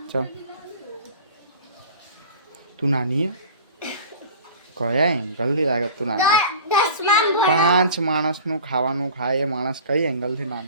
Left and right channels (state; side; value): inverted; both; correlation -0.40